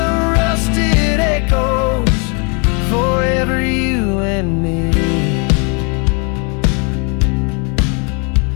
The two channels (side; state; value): right; quieter; 34.8 dB